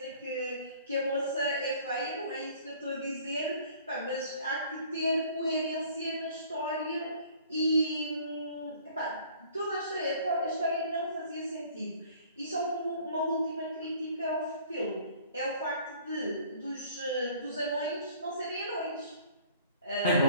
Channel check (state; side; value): inverted; both; correlation -0.53